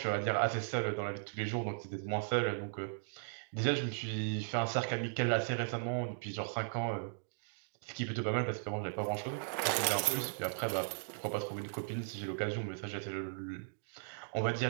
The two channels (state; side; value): silent; left; digital silence